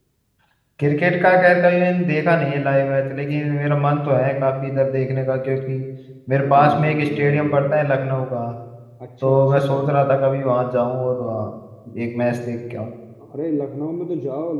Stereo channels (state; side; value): identical; both; correlation 1.00